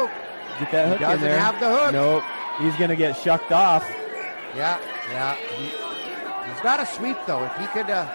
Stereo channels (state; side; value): inverted; both; correlation -1.00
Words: Get that hook in doesn't there. have the hook. Nope. He's gonna get shucked off. Yeah. He's got to sweep, though. If he could,